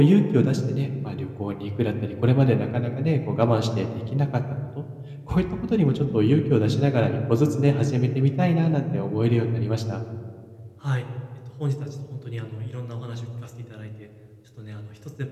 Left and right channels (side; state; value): both; identical; correlation 1.00